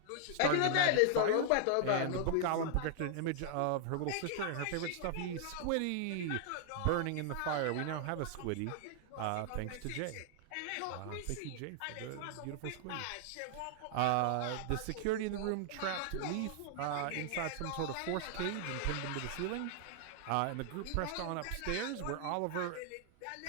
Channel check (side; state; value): both; different; correlation -0.01